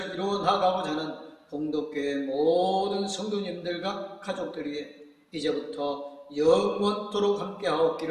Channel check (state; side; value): identical; both; correlation 1.00